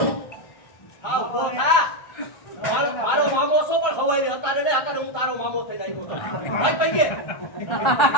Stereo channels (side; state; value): right; late; 1.2 ms